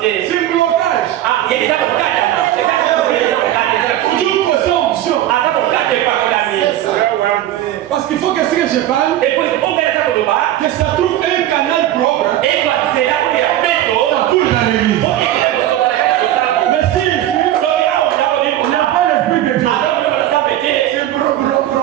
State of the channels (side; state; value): left; quieter; 13.1 dB